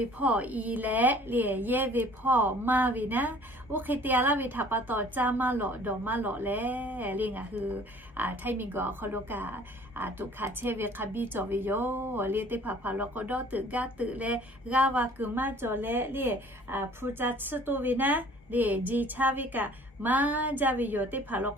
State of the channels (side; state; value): both; normal; correlation 0.52